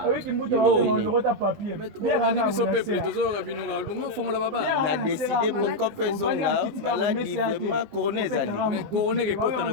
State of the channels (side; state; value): left; late; 19 ms